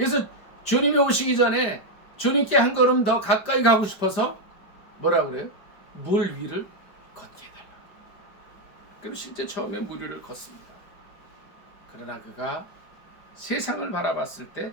주님이 오시기 전에 주님께 한 걸음 더 가까이 가고 싶어서 뭐라고 그래요? 물 위를 걷게 해달라고. 그리고 실제 처음에 물 위를 걷습니다. 그러나 그가 세상을 바라봤을 때,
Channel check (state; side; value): late; right; 5.1 ms